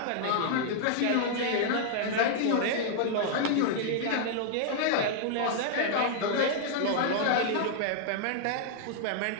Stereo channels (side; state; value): both; different; correlation -0.01